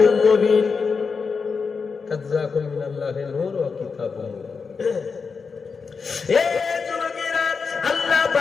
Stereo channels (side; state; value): right; quieter; 5.2 dB